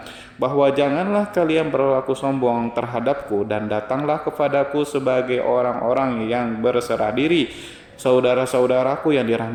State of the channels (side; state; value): both; identical; correlation 1.00